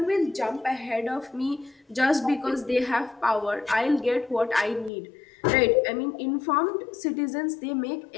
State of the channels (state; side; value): drops out; right; at 4.9 s